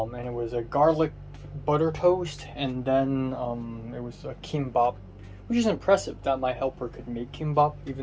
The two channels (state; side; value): identical; both; correlation 1.00